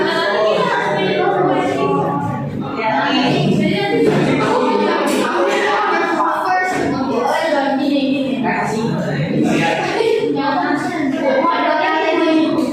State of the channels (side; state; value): both; identical; correlation 1.00